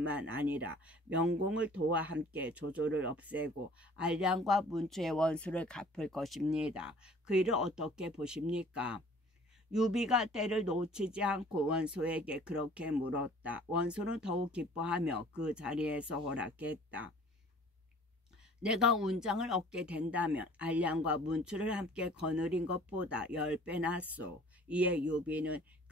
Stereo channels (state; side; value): normal; both; correlation 0.51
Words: 아니라 명공을 도와 함께 조조를 없애고 알량과 문추의 원수를 갚을 것입니다. 그 일을 어떻게 보십니까? 유비가 때를 놓치지 않고 원소에게 그렇게 물었다. 원소는 더욱 기뻐하며 그 자리에서 허락했다. 내가 운장을 얻게 된다면 알량과 문추를 함께 거느린 것보다 10배 낫소. 이에 유비는